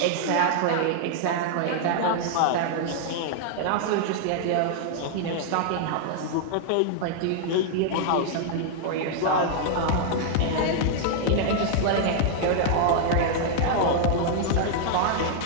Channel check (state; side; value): different; both; correlation -0.01